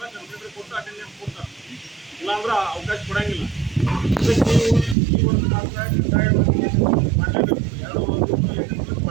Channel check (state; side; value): drops out; left; at 5.0 s